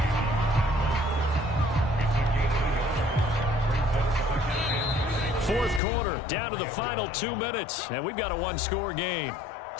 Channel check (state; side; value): drops out; right; at 5.8 s